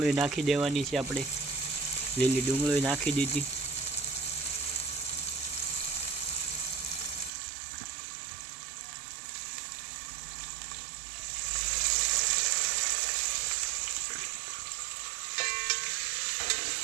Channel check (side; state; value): left; drops out; at 7.3 s